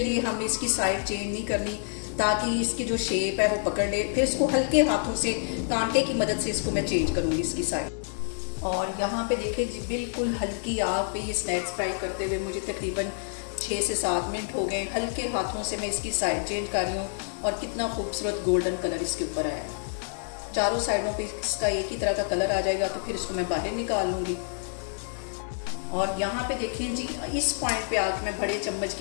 हमें इसकी साइड चेंज नहीं करनी ताकि इसकी जो शेप है वो पकड़ ले। फिर इसको हल्के हाथों से कांटे की मदद से इसको मैं चेंज करूँगी इसकी साइड। और यहाँ पे देखें जी, बिल्कुल हल्की आग पे ये स्नैक्स फ्राई करते हुए मुझे तकरीबन 6 से 7 मिनट हो गए। हल्के हाथों से मैं इसकी साइड चेंज कर रही हूँ और कितना खूबसूरत गोल्डन कलर इसके ऊपर आया है। चारों साइडों पे इसका एक ही तरह का कलर आ जाएगा तो फिर इसको मैं बाहर निकाल लूँगी। और यहाँ पे देखें जी, इस पॉइंट पे आके मैं बड़े चम्मच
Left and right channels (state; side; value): silent; right; 59 dB below the other